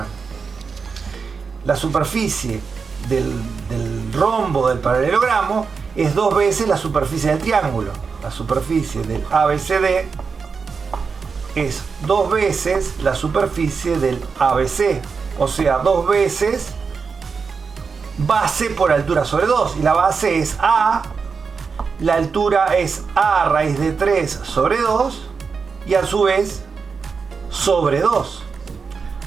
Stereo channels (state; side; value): quieter; left; 5.3 dB